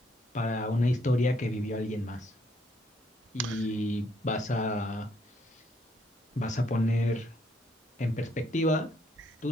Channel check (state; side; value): normal; both; correlation 0.71